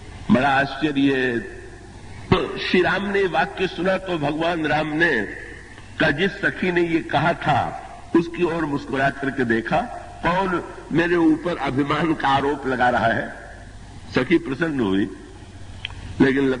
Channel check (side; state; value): both; identical; correlation 1.00